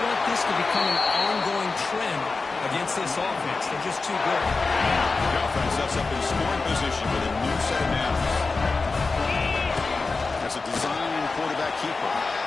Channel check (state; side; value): quieter; right; 4.0 dB